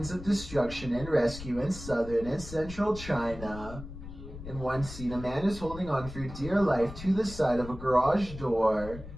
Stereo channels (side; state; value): left; noise; rumble, 12 dB below the sound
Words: of destruction and rescue in southern and central China. In one scene, a man is holding on for dear life to the side of a garage door